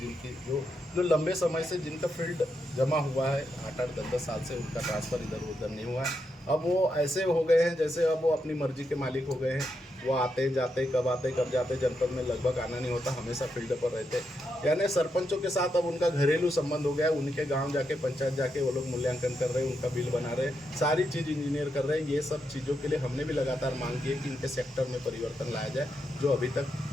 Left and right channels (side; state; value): both; normal; correlation 0.83